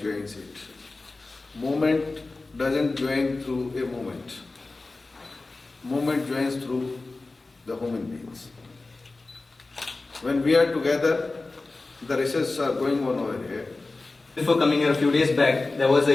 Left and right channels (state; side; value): quieter; right; 3.4 dB